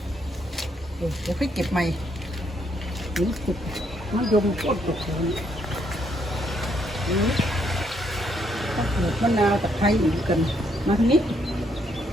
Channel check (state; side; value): normal; both; correlation 0.73